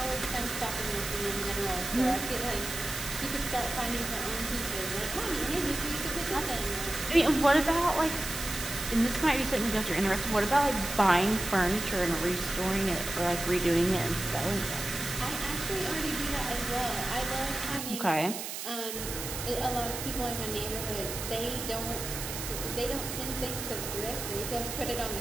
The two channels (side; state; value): right; noise; hiss, 6 dB below the sound